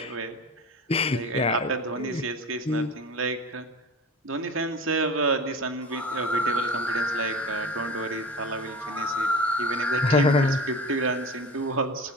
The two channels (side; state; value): both; normal; correlation 0.34